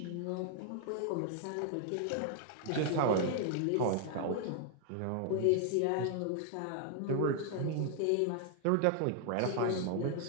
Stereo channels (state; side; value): different; both; correlation 0.00